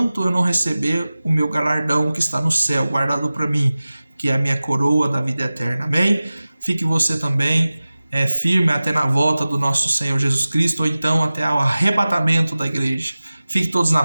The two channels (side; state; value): both; inverted; correlation -0.97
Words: eu não receber o meu galardão que está no céu, guardado para mim, que é a minha coroa da vida eterna. Amém? Fique você também firme até na volta do nosso Senhor Jesus Cristo, ou então até o arrebatamento da igreja. Fique todos na